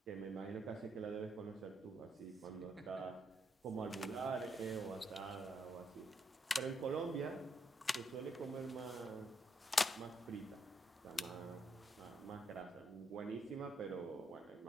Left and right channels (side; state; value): both; normal; correlation 0.78